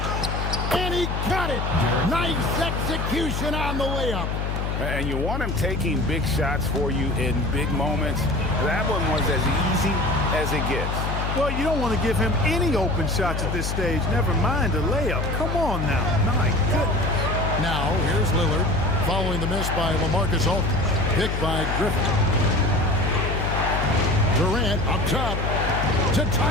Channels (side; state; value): left; noise; hum, 2 dB below the sound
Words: And he got it. Nice execution on the layup. And you want him taking big shots for you in big moments. That one was as easy as it gets. Well, you don't want to give him any open shots at this stage. Never mind a layup. Come on now. My goodness. Now, here's Lillard. Following the miss by LaMarcus Aldridge. Picked by Griffin. Durant up top to